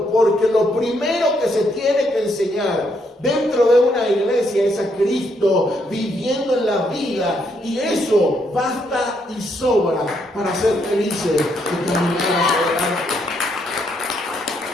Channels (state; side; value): normal; both; correlation 0.75